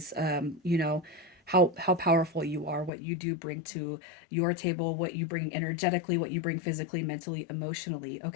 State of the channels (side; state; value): right; drops out; at 2.9 s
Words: how powerful you are, what you do bring to your table, what you bring energetically, what you bring physically, mentally, emotionally.